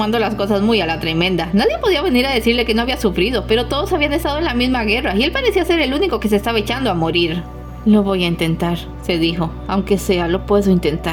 las cosas muy a la tremenda. Nadie podía venir a decirle que no había sufrido, pero todos habían estado en la misma guerra y él parecía ser el único que se estaba echando a morir. Lo voy a intentar, se dijo, aunque sea, lo puedo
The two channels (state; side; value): identical; both; correlation 1.00